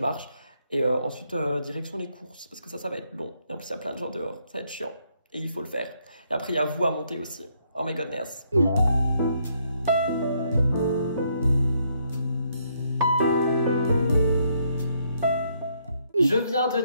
marche. Et ensuite direction les courses parce que ça va être long. Et en plus il y a plein de gens dehors, ça va être chiant. Et il faut le faire. Et après il y a vous à monter aussi. Oh my goodness. Je viens de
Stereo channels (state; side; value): inverted; both; correlation -0.73